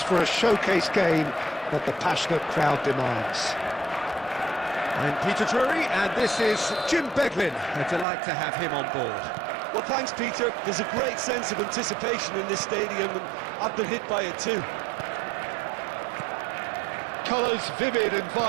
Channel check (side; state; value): left; drops out; at 8.1 s